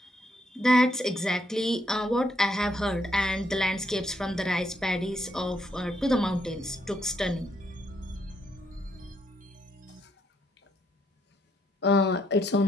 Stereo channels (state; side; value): normal; both; correlation 0.74